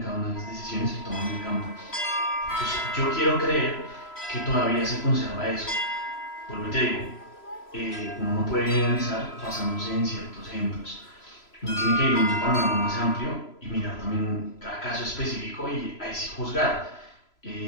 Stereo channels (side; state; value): right; late; 3.0 ms